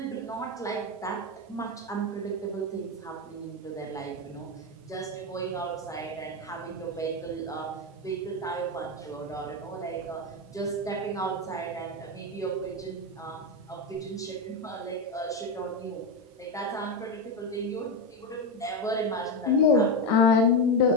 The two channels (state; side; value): normal; both; correlation 0.11